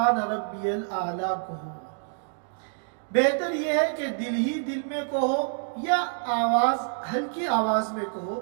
ربی الاعلیٰ کہو۔ بہتر یہ ہے کہ دل ہی دل میں کہو یا ہلکی آواز میں کہو،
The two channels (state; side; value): silent; left; digital silence